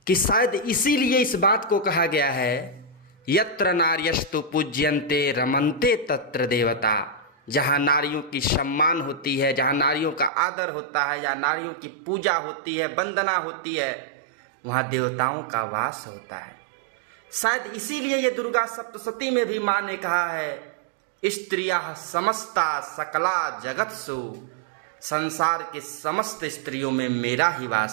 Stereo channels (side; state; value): left; drops out; at 10.3 s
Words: कि शायद इसीलिए इस बात को कहा गया है, यत्र नार्यस्तु पूज्यन्ते रमन्ते तत्र देवता। जहाँ नारियों की सम्मान होती है, जहाँ नारियों का आदर होता है, जहाँ नारियों की पूजा होती है, वंदना होती है, वहाँ देवताओं का वास होता है। शायद इसीलिए ये दुर्गा सप्तशती में भी माँ ने कहा है, स्त्रियः समस्ता सकला जगत्सु, संसार के समस्त स्त्रियों में मेरा ही